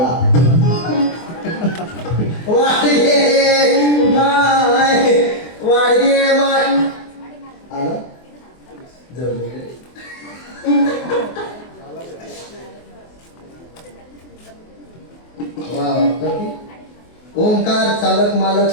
आला ओंकार चालक मालक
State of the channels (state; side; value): late; right; 24 ms